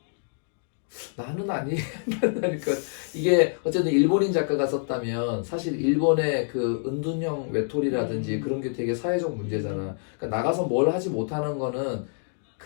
나는 아니라니까. 이게 어쨌든 일본인 작가가 썼다면 사실 일본의 그 은둔형 외톨이라든지 그런 게 되게 사회적 문제잖아. 그러니까 나가서 뭘 하지 못하는 거는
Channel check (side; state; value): right; silent; digital silence